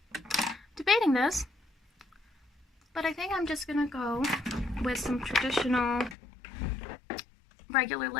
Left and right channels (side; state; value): right; drops out; at 6.2 s